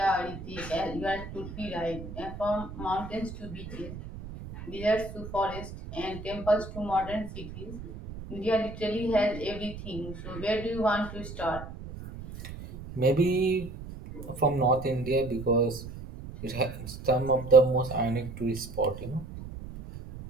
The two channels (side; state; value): right; noise; rumble, 11 dB below the sound